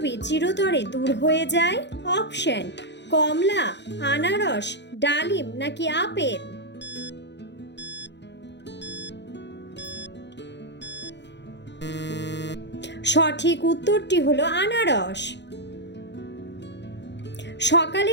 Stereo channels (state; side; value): late; right; 0.51 ms